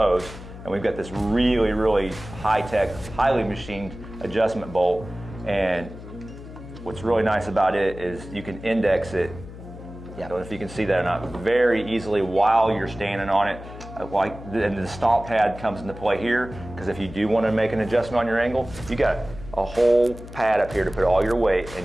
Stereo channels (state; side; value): noise; left; hum, 14 dB below the sound